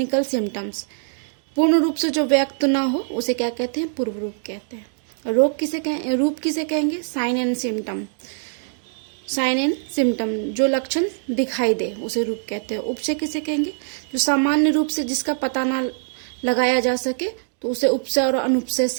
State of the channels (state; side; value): silent; left; digital silence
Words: सिम्टम्स, पूर्ण रूप से जो व्यक्त ना हो उसे क्या कहते हैं? पूर्व रूप कहते हैं। रोग किसे कहें, रूप किसे कहेंगे? Sign and symptom. Sign and symptom जो लक्षण दिखाई दे उसे रूप कहते हैं। उपसय किसे कहेंगे? जो सामान्य रूप से जिसका पता ना लगाया जा सके तो उसे उपसय और